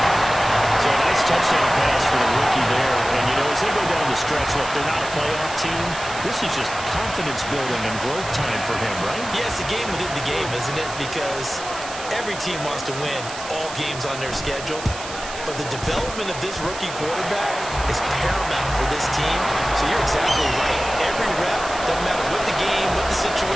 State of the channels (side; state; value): right; noise; hiss, 11 dB below the sound